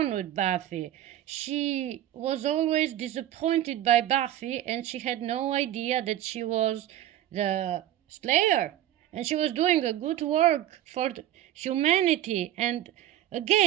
with Buffy. She was always disappointed by Buffy, and she had no idea that she was the Slayer, and she was doing a good work for humanity. And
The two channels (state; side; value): quieter; left; 12.8 dB